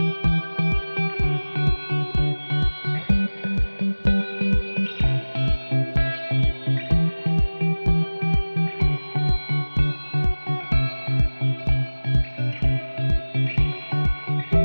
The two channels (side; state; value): both; inverted; correlation -1.00